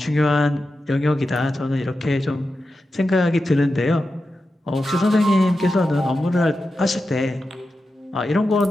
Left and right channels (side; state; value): both; normal; correlation 0.90